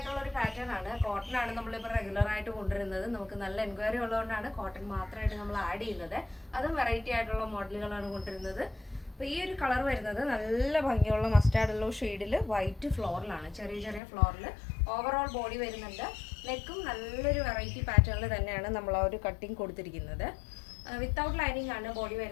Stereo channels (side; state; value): right; drops out; at 14.0 s